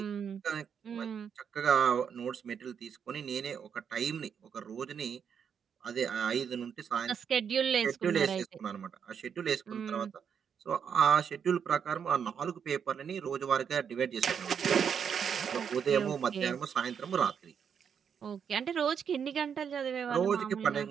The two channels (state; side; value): quieter; left; 7.4 dB